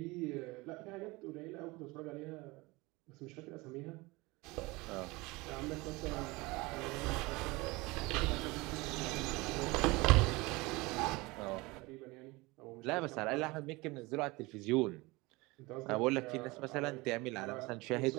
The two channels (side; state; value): left; quieter; 23.2 dB